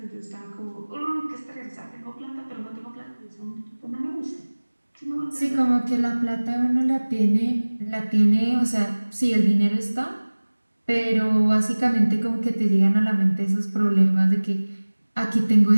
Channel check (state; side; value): inverted; both; correlation -1.00